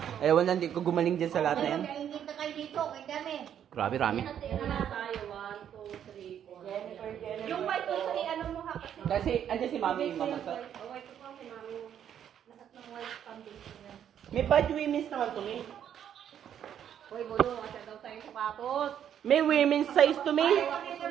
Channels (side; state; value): left; quieter; 9.5 dB